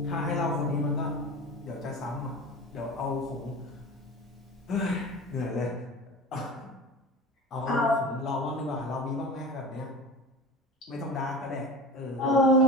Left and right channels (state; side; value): normal; both; correlation 0.33